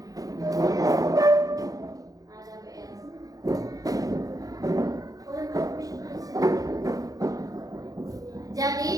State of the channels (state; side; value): late; left; 0.17 ms